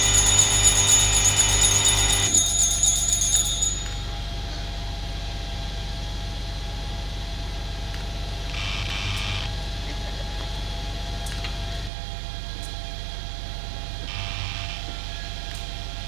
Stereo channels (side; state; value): left; drops out; at 11.9 s